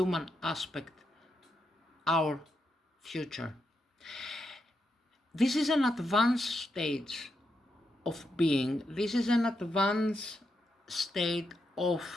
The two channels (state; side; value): normal; both; correlation 0.83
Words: aspect, our future. This is an advanced stage of being. This is an advanced state